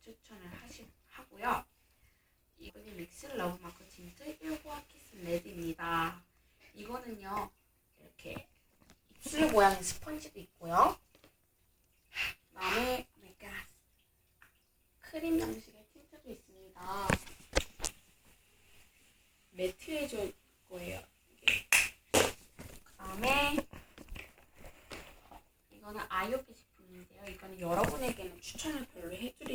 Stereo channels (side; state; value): both; identical; correlation 1.00